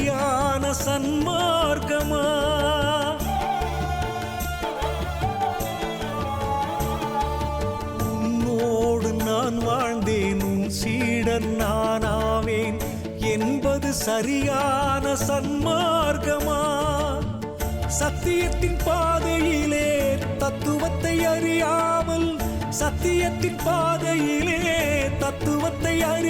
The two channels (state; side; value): identical; both; correlation 1.00